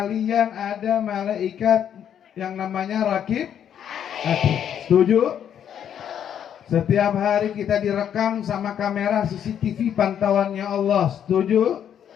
ada malaikat yang namanya Rakib. Setuju? Setiap hari kita direkam sama kamera CCTV pantauannya Allah. Setuju?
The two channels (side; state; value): right; quieter; 9.2 dB